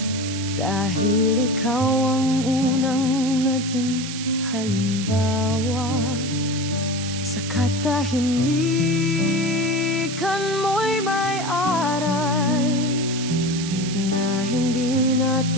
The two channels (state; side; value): noise; right; hiss, 8 dB below the sound